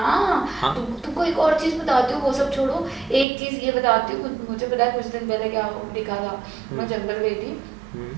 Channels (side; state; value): left; drops out; at 3.2 s